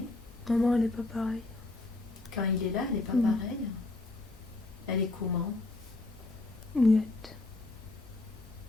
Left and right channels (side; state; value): right; quieter; 3.0 dB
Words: Maman, elle est pas pareille. Quand il est là, elle n'est pas Mm. pareille. Elle est comment? Muette.